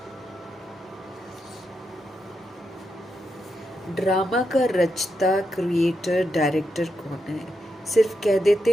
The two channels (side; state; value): both; normal; correlation 0.84